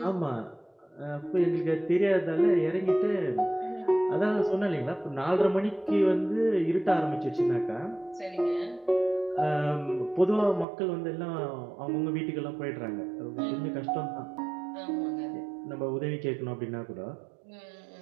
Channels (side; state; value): left; drops out; at 10.7 s